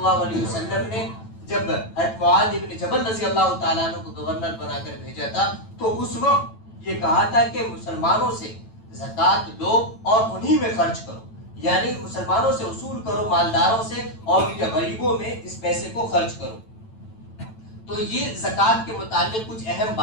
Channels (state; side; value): late; right; 9.0 ms